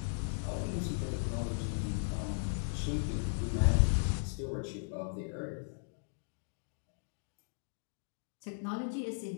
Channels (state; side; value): silent; right; digital silence